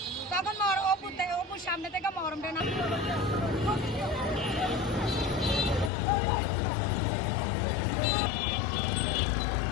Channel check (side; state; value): right; drops out; at 5.9 s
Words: তখন অপুর সামনে থেকে মরমটা না